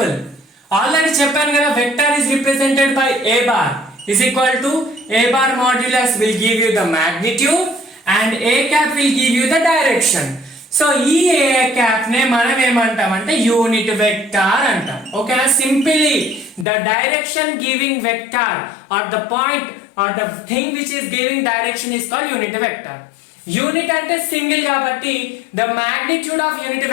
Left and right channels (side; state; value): right; drops out; at 16.7 s